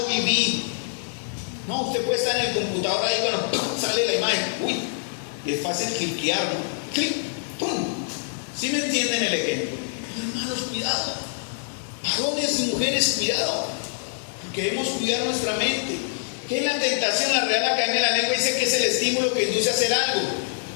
viví. No, usted puede estar en el computador ahí cuando ¡pum! Sale la imagen, es fácil cliquear, ¿no? Clic, ¡pum! ¿Sí me entienden el ejemplo? Hermanos, cuidado. Varones y mujeres, cuidado. Porque debemos cuidar nuestra mente. ¿Qué es la tentación? La Real Academia de la Lengua dice que es el estímulo que induce a hacer algo.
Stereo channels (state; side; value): silent; right; digital silence